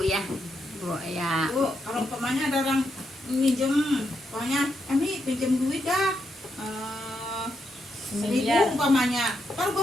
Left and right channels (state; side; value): normal; both; correlation 0.82